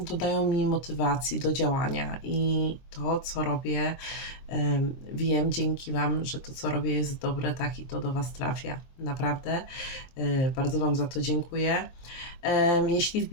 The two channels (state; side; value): late; right; 23 ms